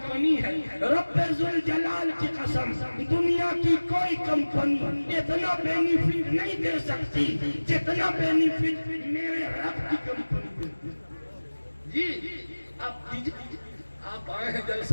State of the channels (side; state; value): both; inverted; correlation -1.00